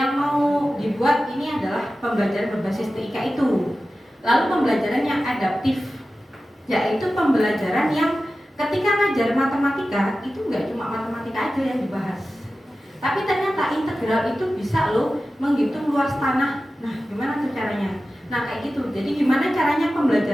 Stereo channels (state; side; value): normal; both; correlation 0.94